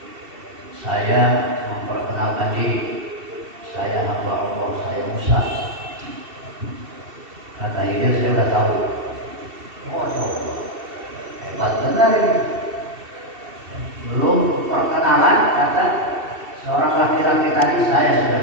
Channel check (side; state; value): left; late; 2.7 ms